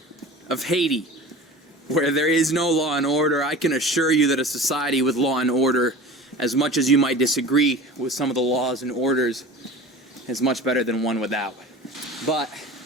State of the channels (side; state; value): both; normal; correlation 0.38